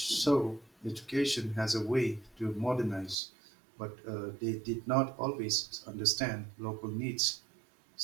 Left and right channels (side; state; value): left; drops out; at 3.2 s